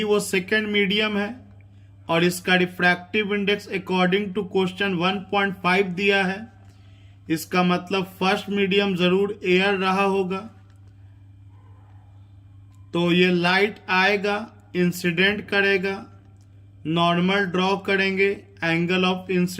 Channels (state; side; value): identical; both; correlation 1.00